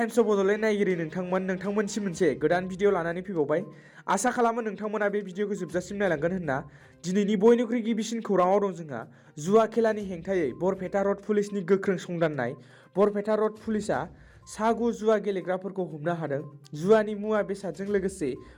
of Bodoland नायगिरि नोंथांमोनसिम मोनसे गोदान भिडिअ लानानै फैबावबाय। आसा खालामो नोंथांमोना बे भिडिअखौ जोबजासिम नायलांगोन होनना। दिनैनि बयनिख्रुइ गिबिसिन खौराङाव दं जोंहा जुवा खेलानि हेंथायै बरपेटा रड पुलिसनि गोख्रों संदाननाय। बरपेटा रड पुलिसआ सा9 जुवा गेलेग्राफोरखौ हमनो हादों। जुवानि मुवा बेसादजों लोगोसे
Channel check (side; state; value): both; identical; correlation 1.00